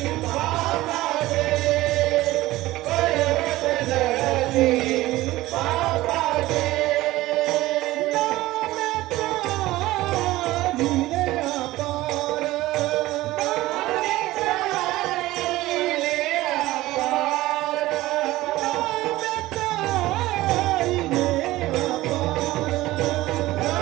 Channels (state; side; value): quieter; left; 17.4 dB